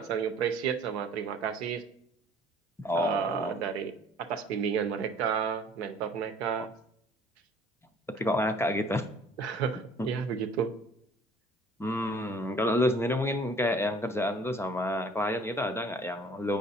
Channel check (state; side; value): normal; both; correlation 0.53